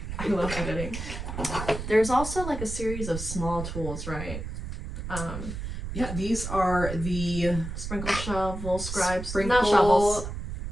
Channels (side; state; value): right; noise; rumble, 6 dB below the sound